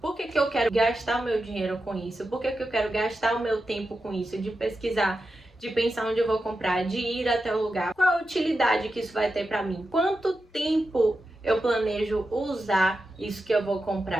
por que eu quero gastar o meu dinheiro com isso? Por que eu quero gastar o meu tempo com isso? De pesquisar, de pensar onde eu vou comprar, de ir até o lugar. Qual a utilidade que isso vai ter para mim? Quanto tempo eu planejo usar isso que eu vou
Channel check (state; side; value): normal; both; correlation 0.90